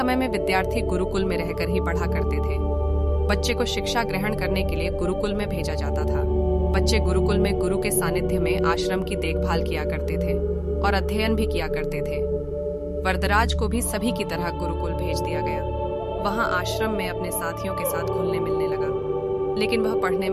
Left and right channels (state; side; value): identical; both; correlation 1.00